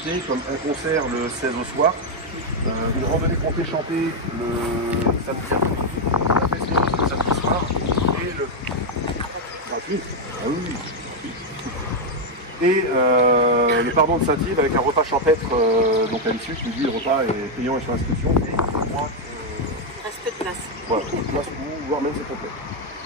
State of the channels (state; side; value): normal; both; correlation 0.02